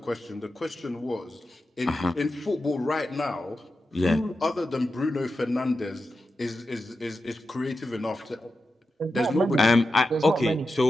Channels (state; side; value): normal; both; correlation 0.90